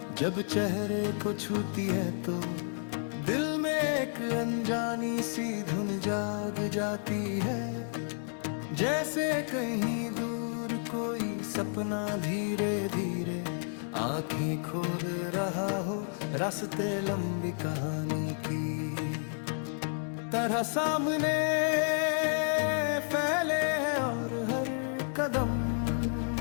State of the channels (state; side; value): silent; right; 57 dB below the other